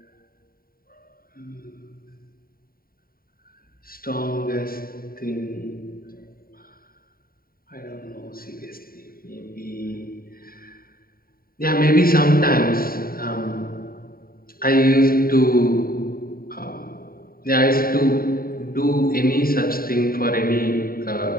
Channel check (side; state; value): right; late; 0.43 ms